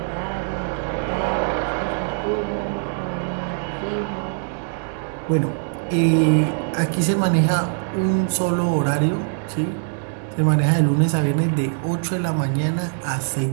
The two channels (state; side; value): silent; left; digital silence